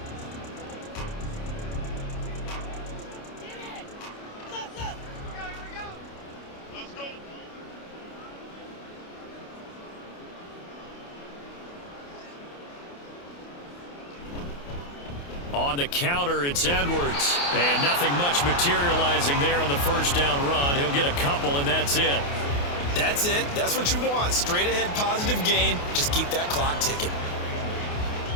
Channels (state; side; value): late; right; 28 ms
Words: On the counter, it's Edwards. And nothing much materializing there on the first down run. He'll get a couple, and that's it. That's it. That's what you want. Straight ahead positive gain. Just keep that clock ticking.